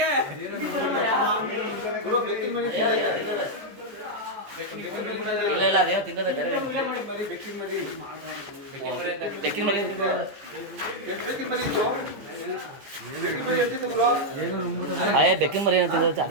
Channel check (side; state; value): left; late; 14 ms